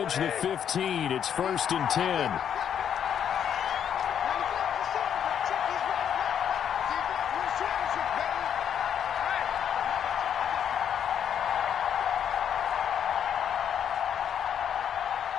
the 15. It's 1st and 10.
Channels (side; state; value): right; quieter; 8.8 dB